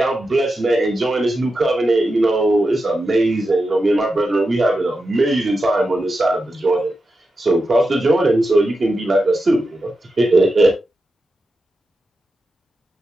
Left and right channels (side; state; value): both; normal; correlation 0.90